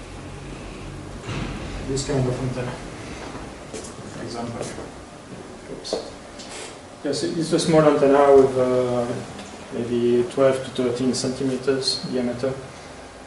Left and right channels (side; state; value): both; identical; correlation 1.00